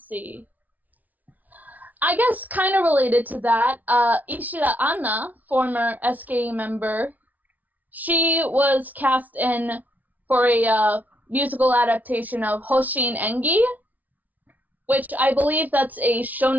I guess kind of related to that, Ishida Anna, former SK member, she was cast in for a musical adaptation of Hoshin Engi, which I believe that's a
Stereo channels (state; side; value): late; left; 0.077 ms